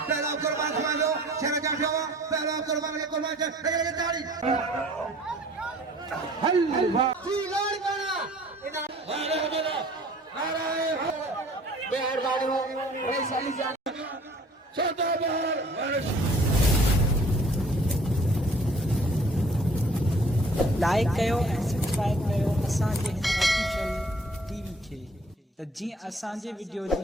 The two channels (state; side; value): normal; both; correlation 0.53